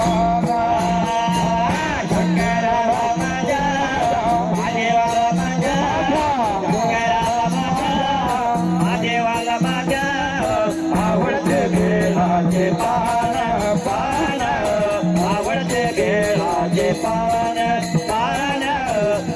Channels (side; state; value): both; identical; correlation 1.00